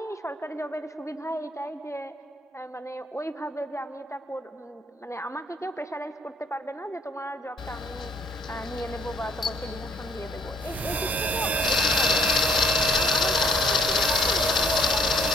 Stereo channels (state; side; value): normal; both; correlation 0.65